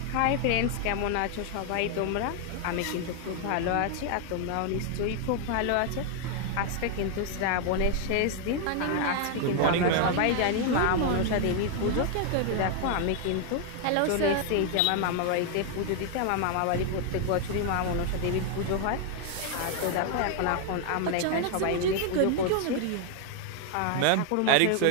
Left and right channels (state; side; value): different; both; correlation 0.00